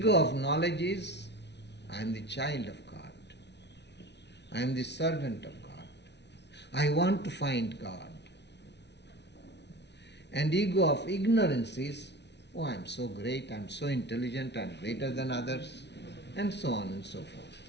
of knowledge is, I am the child of God. I am the servant of God. I want to find God. And ego of ignorance is, oh, I am so great, I am so intelligent, I am greater than others, and so on and so forth.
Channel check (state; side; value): late; right; 0.50 ms